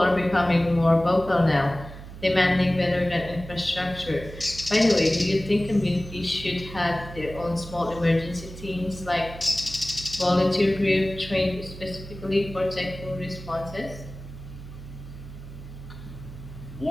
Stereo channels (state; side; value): noise; right; hum, 13 dB below the sound